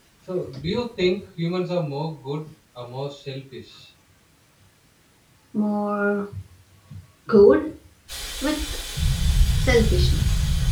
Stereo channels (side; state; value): both; identical; correlation 1.00